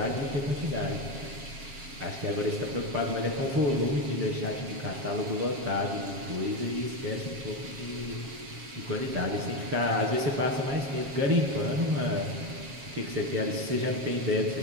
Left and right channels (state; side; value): late; left; 7.3 ms